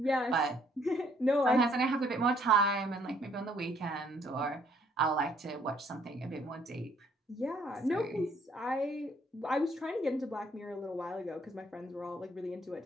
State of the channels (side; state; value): both; normal; correlation 0.65